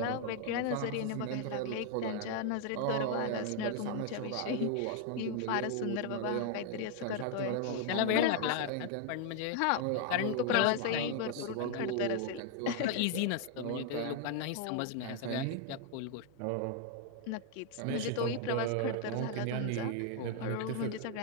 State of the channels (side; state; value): both; different; correlation 0.00